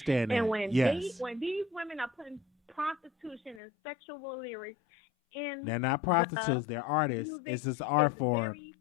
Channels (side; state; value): right; drops out; at 3.6 s